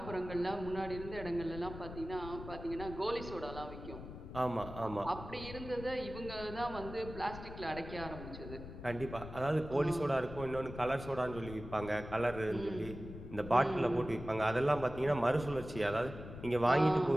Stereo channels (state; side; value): noise; left; rumble, 11 dB below the sound